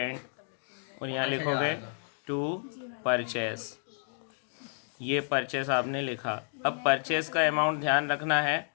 और यहाँ लिखोगे 2 परचेस। ये परचेस आपने लिखा। अब परचेस का अमाउंट ध्यान रखना है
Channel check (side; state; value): right; silent; 57 dB below the other